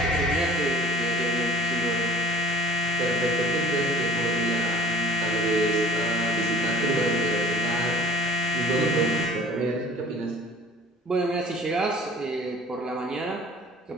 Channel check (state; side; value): normal; both; correlation 0.46